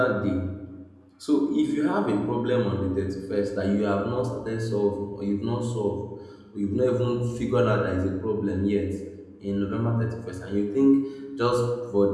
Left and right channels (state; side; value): identical; both; correlation 1.00